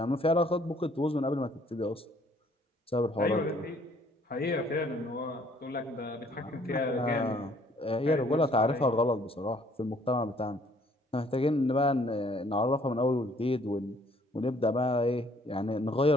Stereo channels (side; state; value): both; normal; correlation 0.61